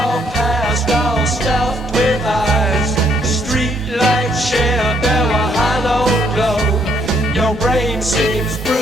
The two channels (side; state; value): both; normal; correlation 0.70